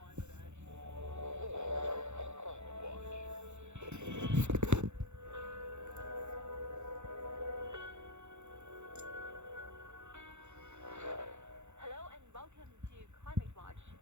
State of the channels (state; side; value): late; left; 0.83 ms